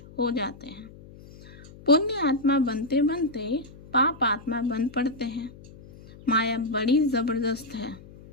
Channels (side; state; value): left; noise; hum, 20 dB below the sound